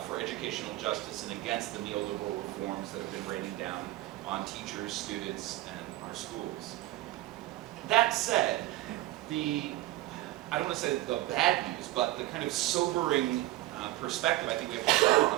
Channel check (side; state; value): left; quieter; 17.0 dB